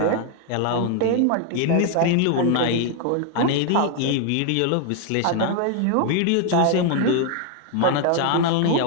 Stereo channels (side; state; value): both; different; correlation 0.00